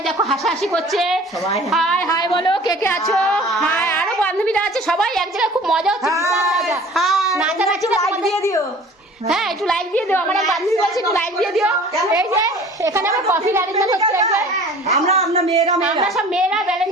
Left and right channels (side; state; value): both; normal; correlation 0.46